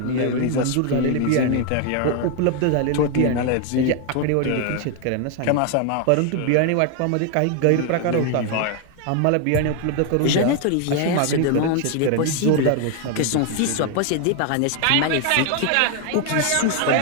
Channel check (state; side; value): different; both; correlation 0.01